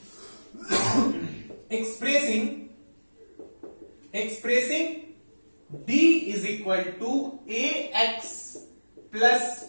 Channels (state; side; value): inverted; both; correlation -1.00